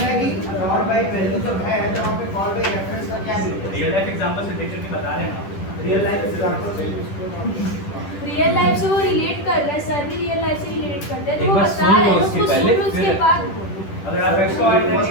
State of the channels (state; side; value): late; right; 10 ms